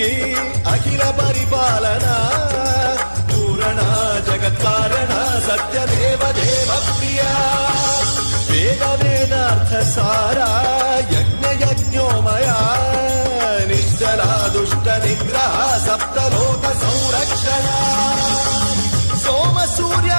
అఖిల పరిపాలన పూరణ జగత్కారణ సత్యదేవ దేవ ప్రియ వేద వేదార్థ సారా యజ్ఞ యజ్ఞో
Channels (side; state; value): both; inverted; correlation -1.00